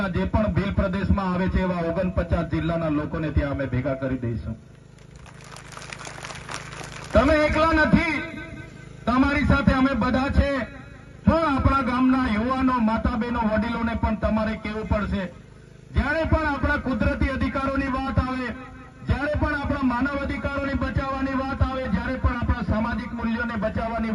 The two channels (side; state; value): both; identical; correlation 1.00